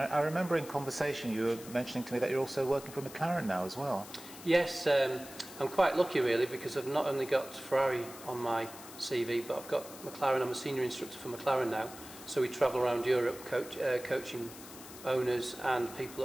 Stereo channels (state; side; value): noise; left; hiss, 15 dB below the sound